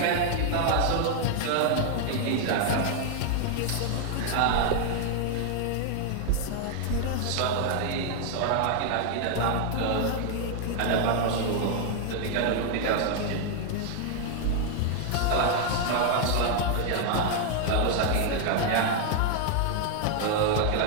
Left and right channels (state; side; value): different; both; correlation 0.00